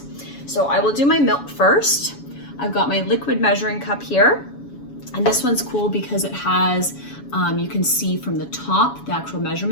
So I will do my milk first. I've got my liquid measuring cup here. And this one's cool because it has, you can see from the top, the actual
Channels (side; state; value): right; late; 7.1 ms